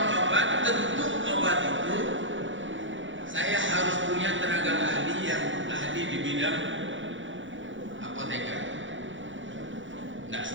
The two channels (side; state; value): left; late; 0.56 ms